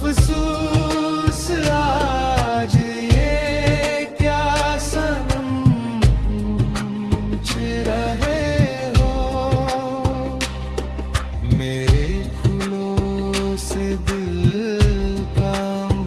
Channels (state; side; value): identical; both; correlation 1.00